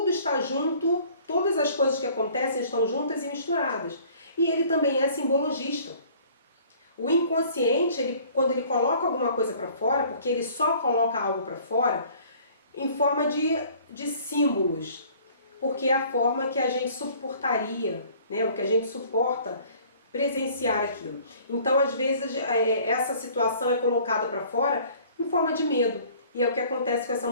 está junto, todas as coisas que acontecem estão juntas e misturadas. E ele também é simbologista. O inconsciente, quando ele coloca alguma coisa para fora, porque ele só coloca algo para fora, em forma de símbolos, porque é a forma que a gente suportaria, né, o que a gente suporta presenciar aquilo. Então, às vezes, essa situação é colocada para fora em forma de medo. E é o que acontece com essa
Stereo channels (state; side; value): inverted; both; correlation -0.53